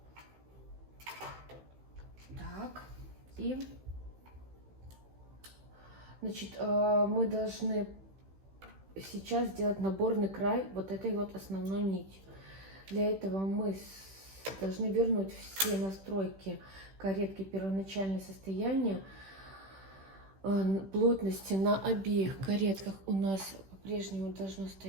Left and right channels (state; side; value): late; left; 15 ms